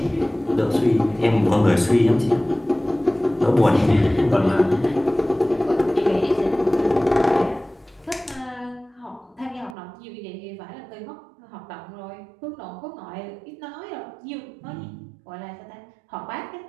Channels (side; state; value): left; drops out; at 9.8 s